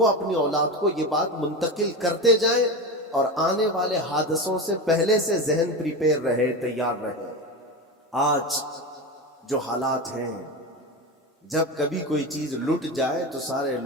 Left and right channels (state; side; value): normal; both; correlation 0.22